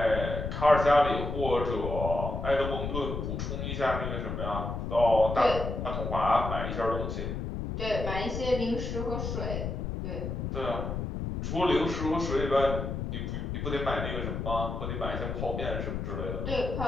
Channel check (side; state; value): left; noise; rumble, 4 dB below the sound